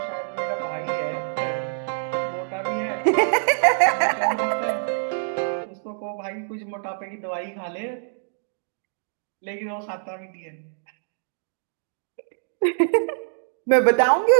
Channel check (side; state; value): left; silent; digital silence